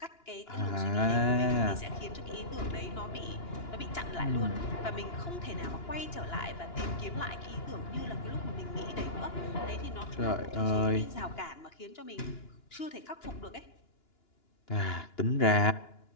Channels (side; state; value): right; late; 2.9 ms